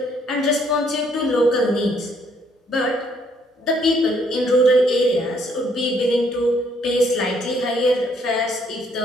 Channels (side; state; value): both; normal; correlation 0.67